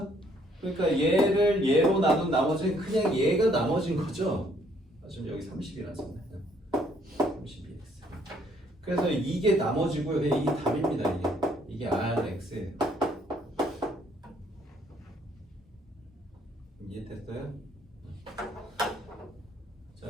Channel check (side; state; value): both; normal; correlation 0.65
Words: 그러니까 얘를 얘로 나눈 나머지는 그냥 얘가 나머진 거죠? 지금 여기 30이라서 그래서 이게 나머지고요. 이게 답입니다. 이게 Rx예요. 이해됐어요? 자,